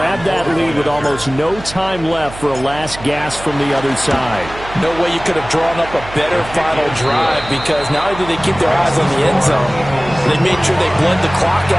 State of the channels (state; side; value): noise; right; hum, 14 dB below the sound